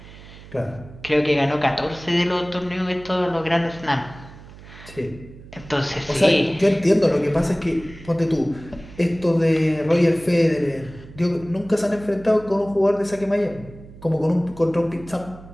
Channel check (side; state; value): right; noise; hum, 18 dB below the sound